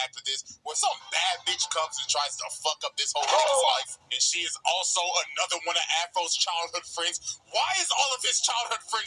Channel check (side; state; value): both; identical; correlation 1.00